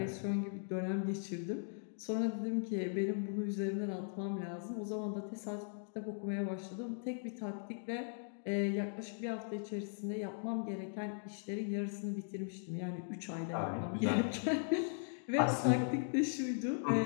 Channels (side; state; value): right; silent; digital silence